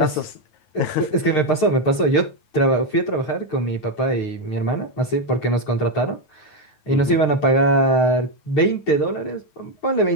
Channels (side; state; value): right; late; 9.3 ms